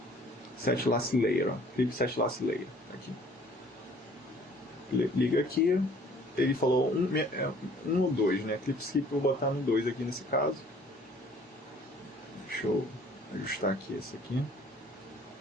Set Last Layer, ó. Clip Set Last Layer, aqui. Liga aqui, ele falou um ou 2, né? Clip Skip eu vou botar no 2 aqui nesse caso. Deixa eu ajustar aqui esse aqui.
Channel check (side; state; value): both; normal; correlation 0.55